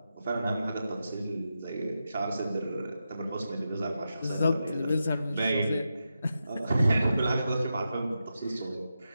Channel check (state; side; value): inverted; both; correlation -0.88